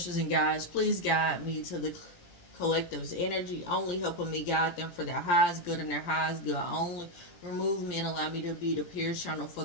and guides, please guide me to the collective's energy, only helping me guide them for their highest good and their highest good only. Remove me and allow me to be the pure channel for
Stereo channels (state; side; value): late; right; 17 ms